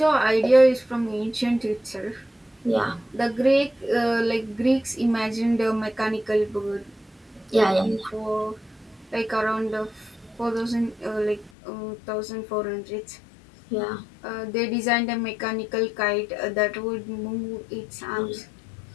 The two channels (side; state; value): right; drops out; at 11.5 s